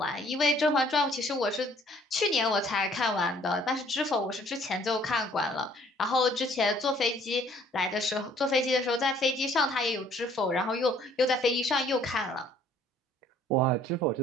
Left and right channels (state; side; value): normal; both; correlation 0.60